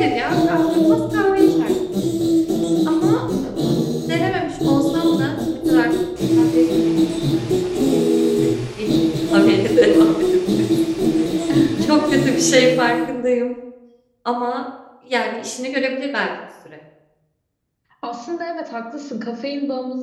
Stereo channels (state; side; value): identical; both; correlation 1.00